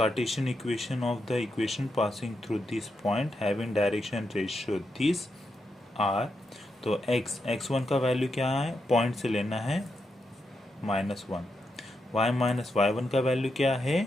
equation of the equation passing through this point having direction ratio this are. तो x1 का value क्या है? पॉइंट से लेना है -1, y माइनस y1 का वैल्यू क्या है?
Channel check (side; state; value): both; normal; correlation 0.84